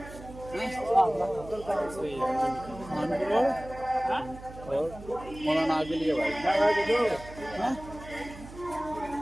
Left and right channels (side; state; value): right; noise; hum, 16 dB below the sound